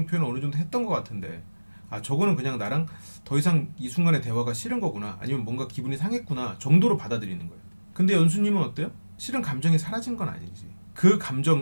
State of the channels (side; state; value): both; inverted; correlation -1.00